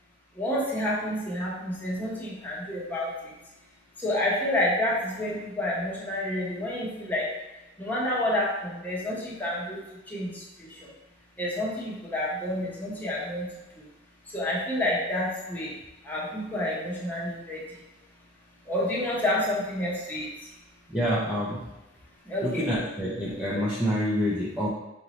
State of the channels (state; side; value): normal; both; correlation 0.39